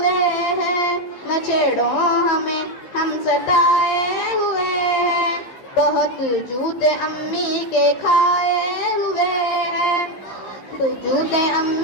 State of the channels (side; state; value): right; late; 15 ms